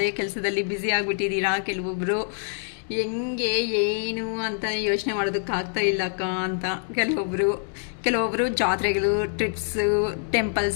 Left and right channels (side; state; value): right; silent; digital silence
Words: ಕೆಲಸದಲ್ಲಿ ಬ್ಯುಸಿ ಆಗಿಬಿಟ್ಟಿದ್ದೀರಾ. ಕೆಲವೊಬ್ಬರು ಹೆಂಗೆ ಏನು ಅಂತ ಯೋಚನೆ ಮಾಡೋದಕ್ಕಾಗ್ತಾ ಇಲ್ಲ ಅಕ್ಕ ಅಂತ, ಕೆಲವೊಬ್ಬರು ಜಾತ್ರೆಗಳು, ಟ್ರಿಪ್ಸು,